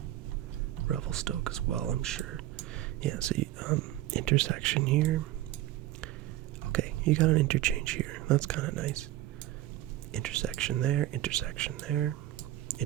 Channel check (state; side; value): quieter; left; 14.6 dB